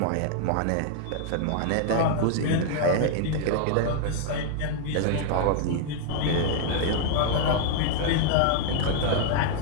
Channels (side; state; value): both; different; correlation 0.00